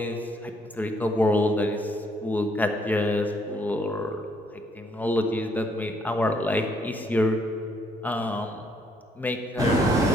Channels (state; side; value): normal; both; correlation 0.69